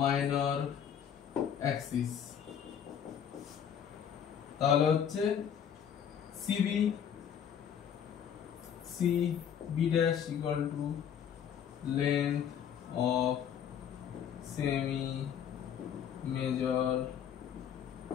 অ্যাক্সিস। তাহলে হচ্ছে CB dash equal to length of semi major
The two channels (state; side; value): quieter; right; 8.6 dB